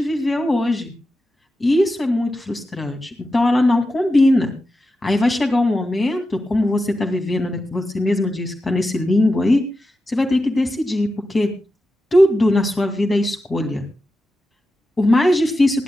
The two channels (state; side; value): normal; both; correlation 0.91